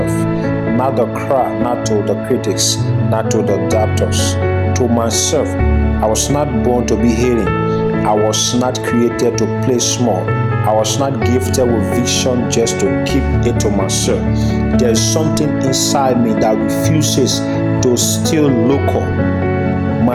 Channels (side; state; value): both; identical; correlation 1.00